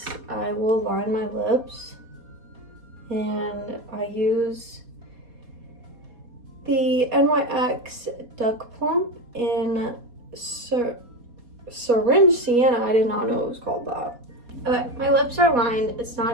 I will line my lips, and I use the NYX Duck Plump in Syringe Sienna. I did not know it was called that. Okay, my lips are lined. It's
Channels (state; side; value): late; left; 4.2 ms